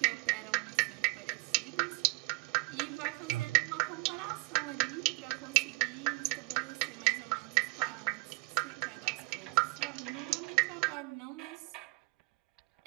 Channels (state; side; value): quieter; left; 26.4 dB